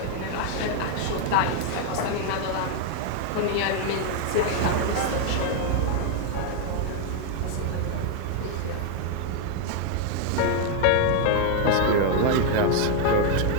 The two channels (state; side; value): different; both; correlation 0.00